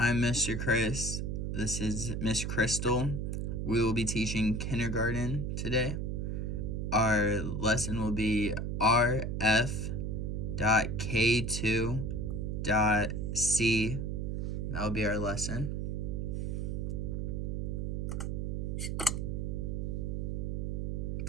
Mr. Chris. This is Miss Crystal. We will be teaching kindergarten today. Our lesson will be rf.k2.c. That will be our lesson.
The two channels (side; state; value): right; noise; hum, 1 dB below the sound